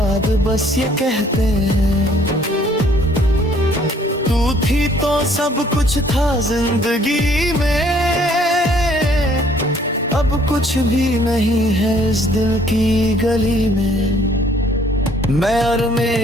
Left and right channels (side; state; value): both; normal; correlation 0.61